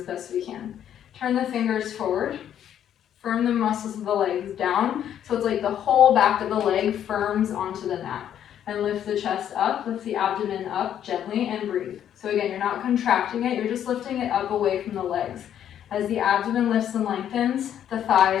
best we can. Turn the fingers forward. Firm the muscles of the legs down. So it's like the whole back of the leg firms onto the mat. And lift the chest up, lift the abdomen up gently, and breathe. So again, you're not contracting it, you're just lifting it up away from the legs. As the abdomen lifts and lengthens, the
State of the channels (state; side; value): quieter; right; 10.1 dB